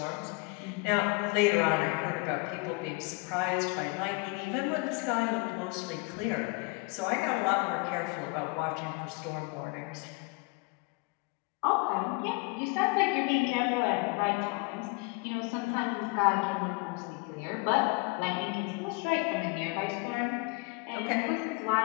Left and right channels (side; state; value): right; quieter; 28.6 dB